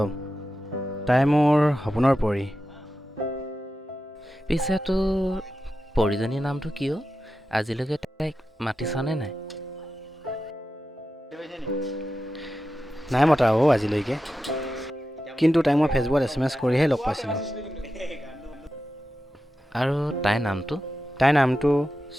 তাই মোৰ সপোনৰ পৰী। পিছে তোৰ পৰিজনীৰ নামটো কিয়? আজিলৈকে তাইক মাতিছনে নাই? নাই মতা আজিলৈকে, কিন্তু তাইক মই ফেচবুকত SMS কৰিহে লগ পাইছিলোঁ। আৰু তাইৰ নামটো? তাইৰ নামটো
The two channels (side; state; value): both; normal; correlation 0.91